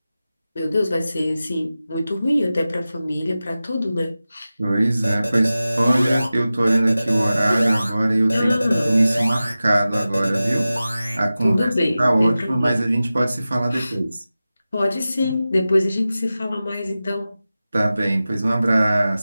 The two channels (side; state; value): both; inverted; correlation -0.95